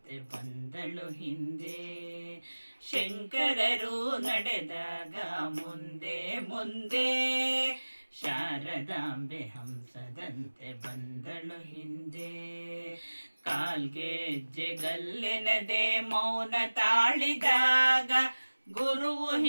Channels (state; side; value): inverted; both; correlation -1.00